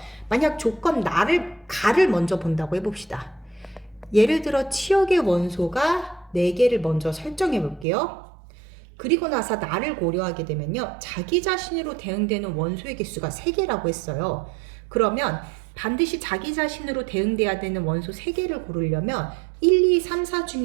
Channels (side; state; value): left; drops out; at 7.9 s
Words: 만약 조건 가를 먼저 본다고 해봅시다. 예를 들어 치역의 원소가 4개를 먼저 설정해 볼게요. 그리고 나서 나를 고려하게 되면요, 자기 자신으로 대응되는 원소의 개수가 3개라고 했어요. 그러면 반드시 자기 자신으로 대응돼야 되는 원소 3개를 고르려면 1, 2, 3, 4